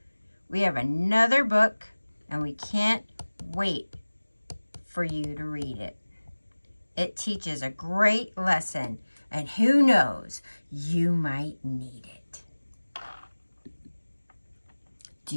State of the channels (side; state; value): both; inverted; correlation -1.00